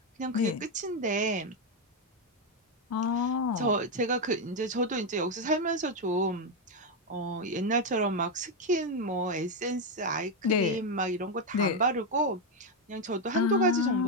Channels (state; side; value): normal; both; correlation 0.05